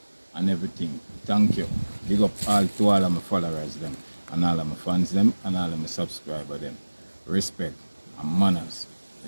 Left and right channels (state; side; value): inverted; both; correlation -1.00